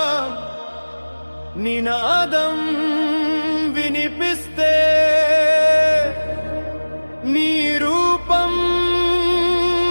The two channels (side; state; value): both; inverted; correlation -1.00